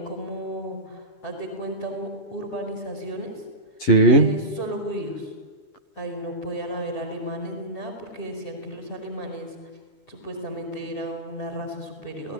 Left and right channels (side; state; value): right; late; 11 ms